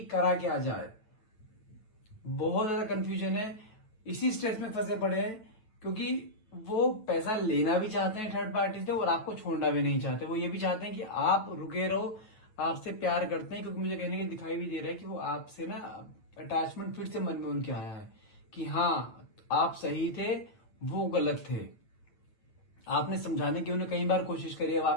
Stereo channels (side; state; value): right; late; 9.0 ms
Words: करा क्या जाए, बहुत ज्यादा कंफ्यूजन है, इसी स्ट्रेस में फंसे पड़े हैं, क्योंकि वो पैसा लेना भी चाहते हैं थर्ड पार्टी से और आपको छोड़ना भी नहीं चाहते। वो ये भी चाहते हैं कि आप रुके रहो, आपसे प्यार करते हैं, क्योंकि मुझे कहने के दिखाई भी दे रहा है कि वो आपसे ना अटैचमेंट फिर से मन में उनके आया है कि हाँ आप सही थे, वो गलत थे। आपने समझाने की उन्हें कई बार कोशिश करी, अब